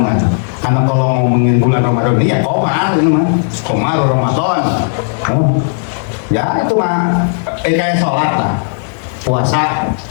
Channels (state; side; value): silent; right; digital silence